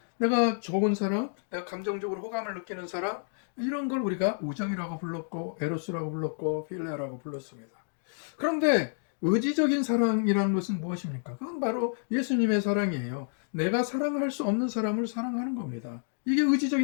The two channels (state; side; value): silent; right; digital silence